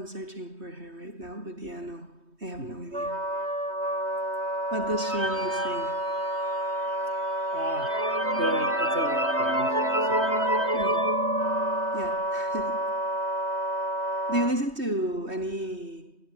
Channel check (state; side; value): late; left; 3.2 ms